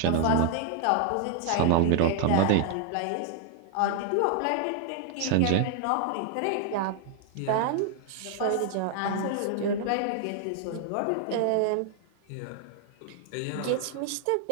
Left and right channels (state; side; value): different; both; correlation 0.00